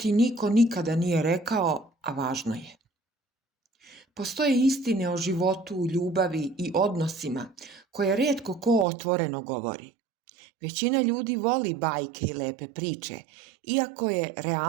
niko nikada nije rekao, a važno je. Postoje istine o životu, ljubavi i odnosima koje rijetko ko otvoreno govori. Većina ljudi voli bajke i lepe priče, iako je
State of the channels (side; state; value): left; drops out; at 8.8 s